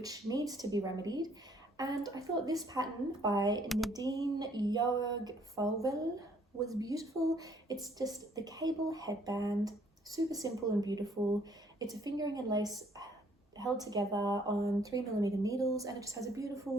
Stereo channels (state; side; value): normal; both; correlation 0.63